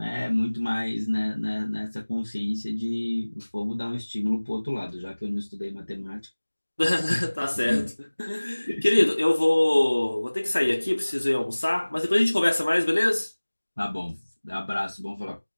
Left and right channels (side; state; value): both; inverted; correlation -1.00